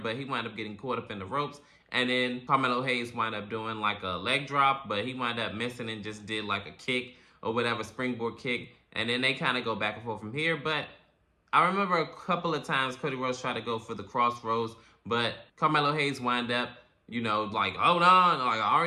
he wound up getting caught up in the ropes. And then Carmelo Hayes wound up doing like a leg drop, but he wound up missing and just did like a kick or whatever, springboard kick. And then they kind of go back and forth from here. But I remember a couple of times Cody Rhodes tried to go for the crossroads, but Carmelo Hayes wound up you know, like, hold on, like, I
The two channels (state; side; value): identical; both; correlation 1.00